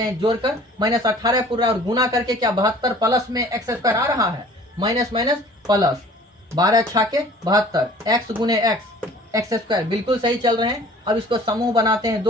हैं, जोड़कर माइनस 18 पूरा और गुना करके क्या 72 प्लस में एक्स स्क्वायर आ रहा है, माइनस माइनस प्लस 12 छाके 72 एक्स गुने एक्स स्क्वायर, बिल्कुल सही चल रहे हैं। अब इसको समूह बनाते हैं,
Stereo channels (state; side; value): normal; both; correlation 0.49